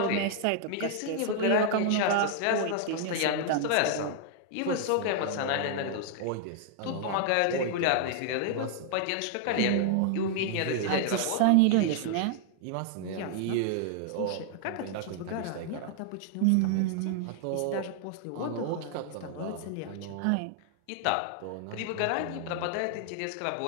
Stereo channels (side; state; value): both; different; correlation 0.00